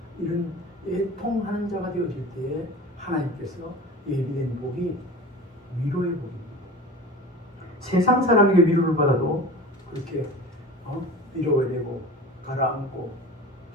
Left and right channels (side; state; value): both; normal; correlation 0.36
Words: 이런 애통하는 자가 되어질 때에 하나님께서 예비된 복이 위로의 복입니다. 세상 사람에게 위로를 받아도 그렇게 위로가 되고 가라앉고